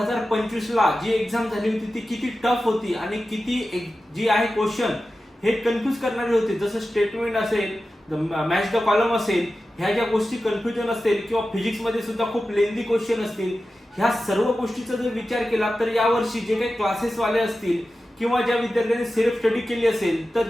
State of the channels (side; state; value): both; normal; correlation 0.93